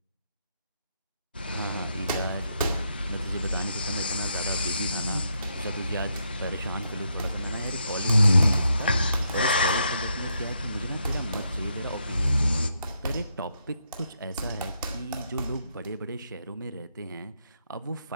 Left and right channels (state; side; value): inverted; both; correlation -0.79